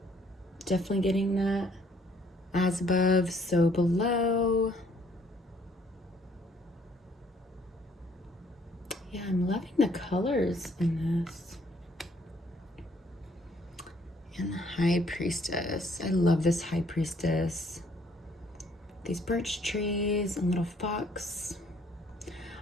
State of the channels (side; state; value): both; normal; correlation 0.63